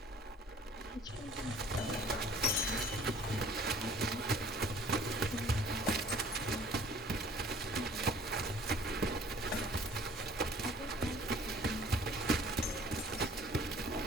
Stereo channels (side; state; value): both; normal; correlation 0.52